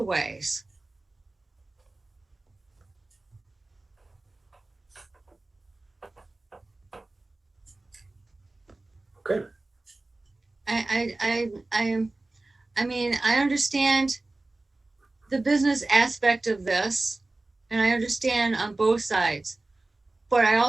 ways? Okay. I understand the business aspect of this, and I understand on both sides, but I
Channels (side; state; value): left; quieter; 3.0 dB